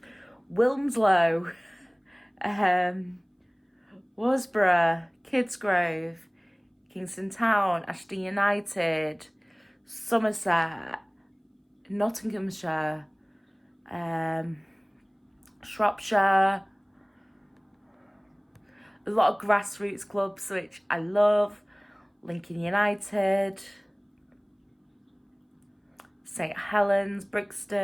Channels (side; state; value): both; identical; correlation 1.00